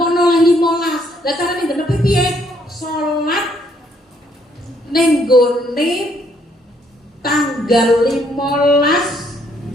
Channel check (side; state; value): both; normal; correlation 0.69